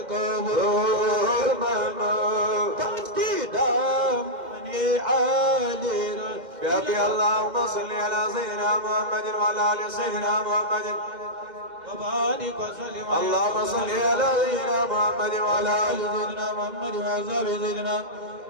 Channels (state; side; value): late; left; 2.1 ms